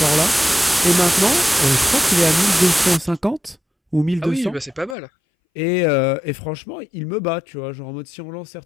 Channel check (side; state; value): right; drops out; at 5.0 s